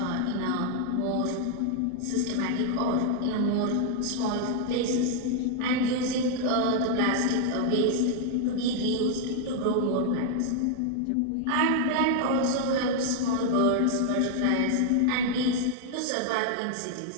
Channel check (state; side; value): different; both; correlation 0.00